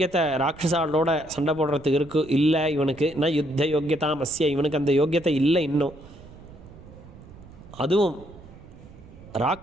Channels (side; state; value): right; noise; rumble, 19 dB below the sound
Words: ராட்சசாலோட சண்டை போடுறதுக்கு இல்லை இவனுக்கு. நான் யுத்த யோக்கியதாமஸ்ய, இவனுக்கு அந்த யோக்கியத்தை இல்லை இன்னும். அதுவும்